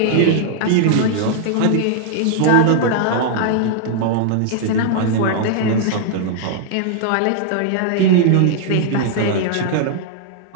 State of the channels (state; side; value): different; both; correlation -0.01